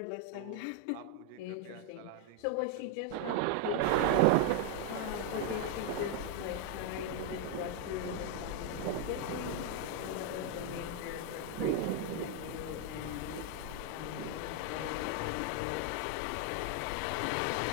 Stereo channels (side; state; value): both; different; correlation 0.01